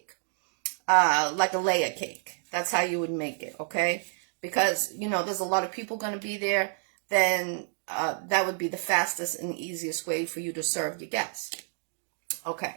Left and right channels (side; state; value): left; silent; 59 dB below the other